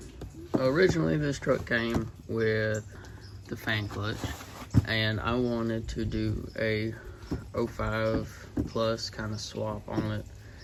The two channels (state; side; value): identical; both; correlation 1.00